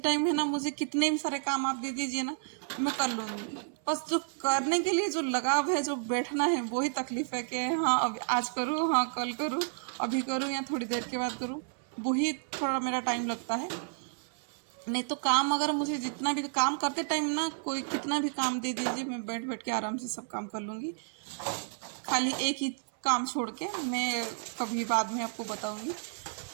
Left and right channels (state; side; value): silent; left; 57 dB below the other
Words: टाइम है ना मुझे कितने भी सारे काम आप दे दीजिए ना, मैं कर लूँगी। बस जो करने के लिए जो लगाव है, जो बैठना है, वही तकलीफ है कि हाँ अब आज करूँ, हाँ कल करूँ, अभी करूँ या थोड़ी देर के बाद करूँ, वही थोड़ा मेरा टाइम लगता है। नहीं तो काम अगर मुझे जितना भी काम करते टाइम ना कोई कितना भी काम दे दीजिए, मैं बैठ बैठ के आराम से सब काम कर लूँगी। खाली एक ही काम छोड़ के, मैं कभी बाद में आपको बताऊंगी,